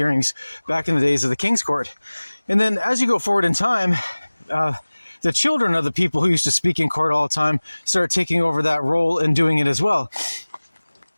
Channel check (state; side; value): inverted; both; correlation -1.00